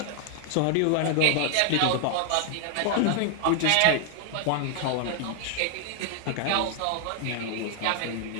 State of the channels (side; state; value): both; different; correlation 0.00